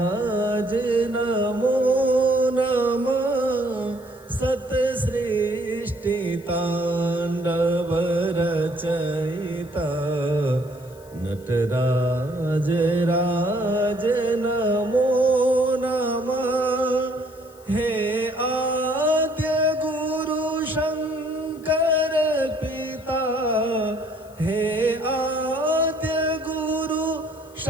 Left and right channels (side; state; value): left; noise; hiss, 26 dB below the sound